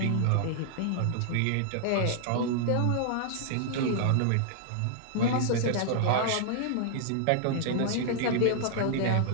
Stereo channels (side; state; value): both; different; correlation -0.01